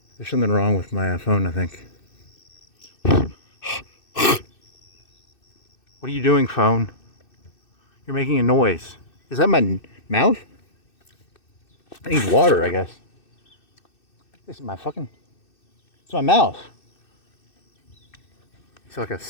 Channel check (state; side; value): late; right; 2.6 ms